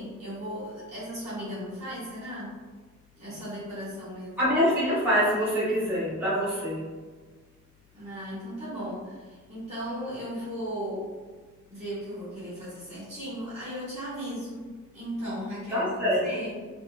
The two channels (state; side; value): noise; left; hum, 30 dB below the sound